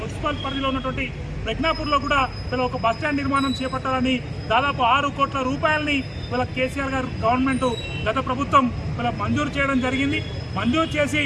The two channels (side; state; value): both; identical; correlation 1.00